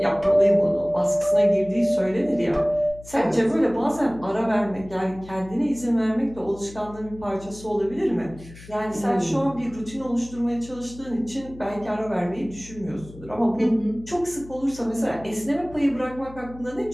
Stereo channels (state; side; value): noise; left; hum, 18 dB below the sound